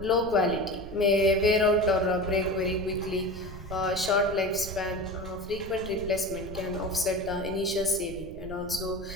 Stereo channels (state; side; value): noise; right; rumble, 13 dB below the sound